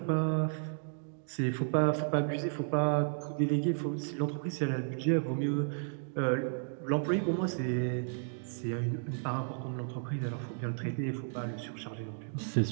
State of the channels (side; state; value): left; silent; digital silence